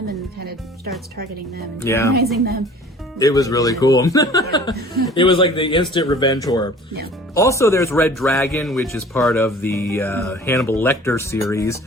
and kind of starts targeting them and terrorizing them. It was really cool. It was like the instant revenge horror. Yeah. Also, there's Red Dragon, which is part of the Hannibal Lecter series.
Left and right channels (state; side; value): normal; both; correlation 0.47